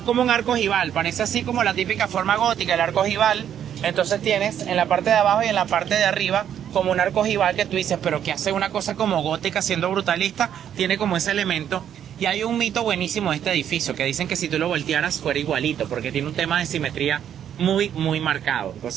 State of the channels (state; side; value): quieter; left; 9.6 dB